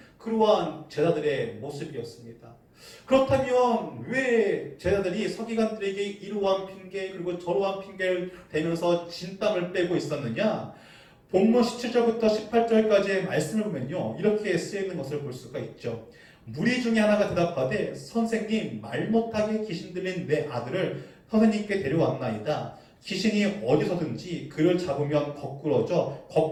그러한 제자들의 모습이었습니다. 그렇다면 왜 제자들이 서기관들에게 이러한 핑계 그리고 저러한 핑계를 대면서 진땀을 빼고 있었느냐? 본문 17절부터 18절까지의 말씀을 보면요, 이렇게 쓰여 있는 것을 볼 수가 있죠. 무리 중에 하나가 대답하되 선생님, 말 못하게 귀신 들린 내 아들을 선생님께 데려왔나이다. 귀신이 어디서든지 그를 잡으면 거꾸러져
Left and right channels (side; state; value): both; identical; correlation 1.00